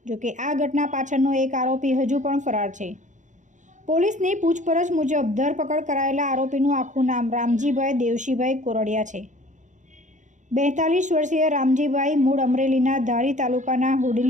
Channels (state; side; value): late; left; 0.36 ms